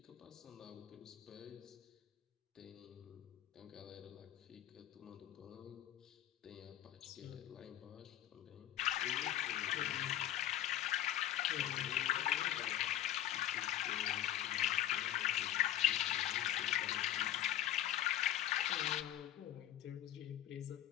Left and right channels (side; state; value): right; quieter; 12.5 dB